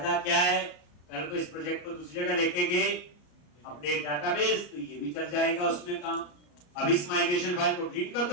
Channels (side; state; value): right; late; 34 ms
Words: क्या है? कल को इस प्रोजेक्ट को दूसरी जगह लेके गए अपडेट डाटाबेस, तो ये भी चल जाएगा उसमें काम। अब इस माइग्रेशन फाइल को डिलीट कर